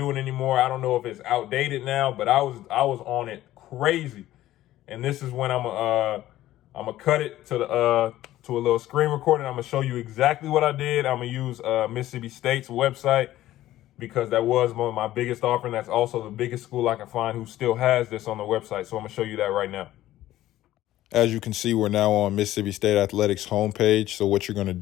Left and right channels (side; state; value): right; quieter; 14.5 dB